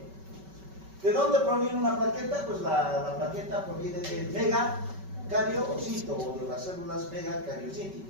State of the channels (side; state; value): left; late; 5.2 ms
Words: ¿De dónde proviene una plaqueta? Pues la plaqueta proviene del megacariocito o de las células